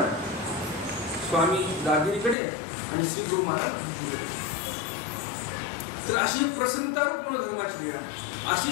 स्वामी दाभेरीकडे आणि श्री प्रभू महाराज. तर अशी प्रसन्नता रूप मनोधर्माची लीळा,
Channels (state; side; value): drops out; right; at 2.4 s